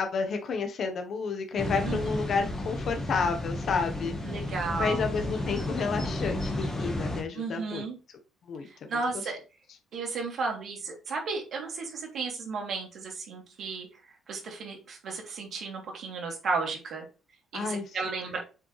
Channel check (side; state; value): both; normal; correlation 0.73